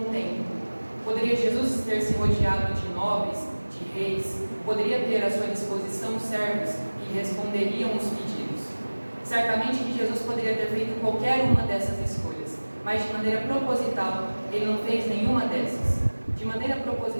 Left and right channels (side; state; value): both; inverted; correlation -1.00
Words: templo. Poderia Jesus ter se rodeado de nobres, de reis, poderia ter à sua disposição servos que responderiam os pedidos. Certamente que Jesus poderia ter feito qualquer uma dessas escolhas, mas de maneira proposital, ele não fez nenhuma dessas. De maneira